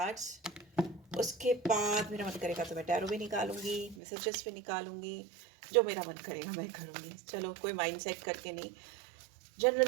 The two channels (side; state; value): left; drops out; at 4.0 s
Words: उसके बाद मेरा मन करेगा तो मैं टैरो भी निकालूंगी, मैसेजेस भी निकालूंगी, जो मेरा मन करेगा मैं करूँगी. चलो, कोई माइंड सेट करके नहीं,